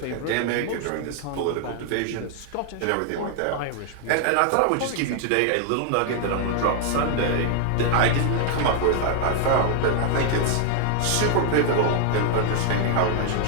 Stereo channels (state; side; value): different; both; correlation 0.00